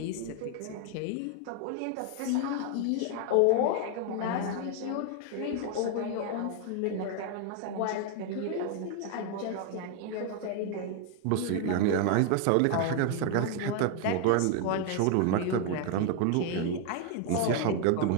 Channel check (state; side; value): different; both; correlation 0.00